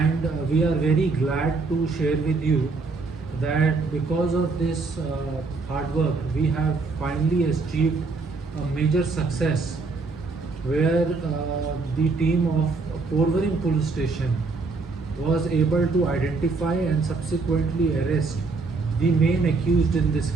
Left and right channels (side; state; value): left; quieter; 4.0 dB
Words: we are very glad to share with you that because of this hard work, we have finally achieved a major success where the team of Porvorim police station was able to identify and subsequently arrest the main accused in this